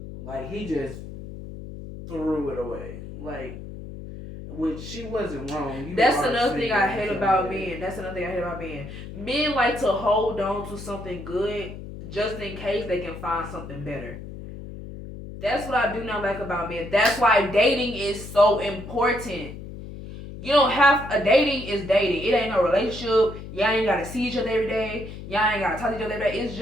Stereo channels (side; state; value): left; noise; hum, 11 dB below the sound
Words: Like, he just threw it away. Like, which she wasn't wrong. That's another thing I hate about men. Men like to hold on to something good just in case they can find something better. That's what I do not like about men. That's why dating is so important. You don't have a dating is dating. It ain't no relationship. Y'all ain't gotta see each other every day. Y'all ain't gotta talk to each other every day. It's